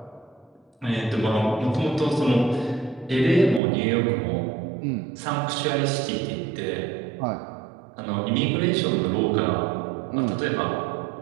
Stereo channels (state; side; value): drops out; left; at 3.6 s